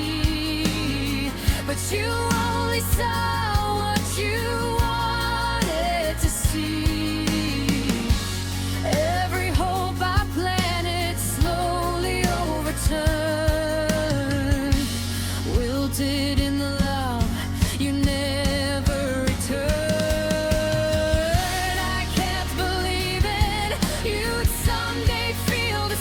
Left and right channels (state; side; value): identical; both; correlation 1.00